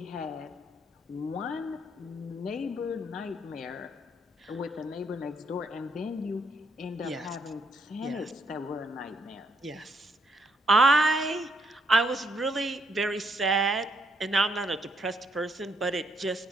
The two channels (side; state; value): both; normal; correlation 0.72